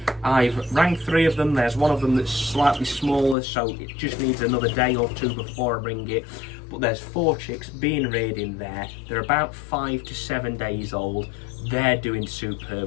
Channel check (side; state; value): right; drops out; at 3.4 s